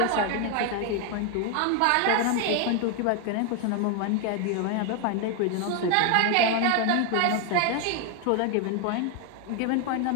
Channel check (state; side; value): different; both; correlation 0.01